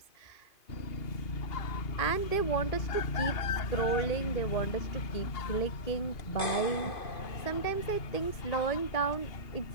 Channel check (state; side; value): late; right; 2.5 ms